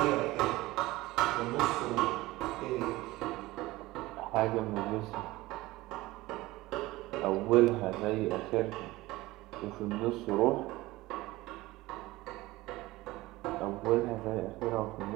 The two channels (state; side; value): quieter; left; 19.0 dB